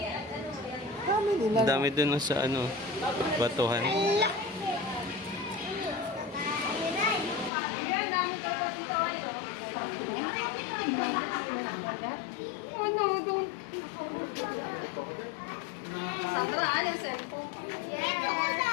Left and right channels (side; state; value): right; drops out; at 7.5 s